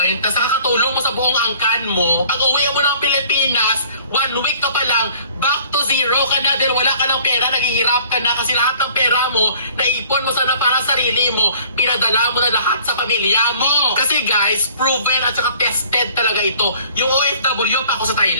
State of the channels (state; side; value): inverted; both; correlation -0.53